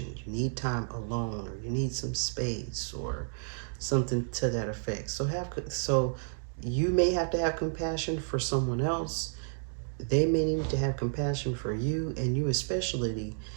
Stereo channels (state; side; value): silent; left; digital silence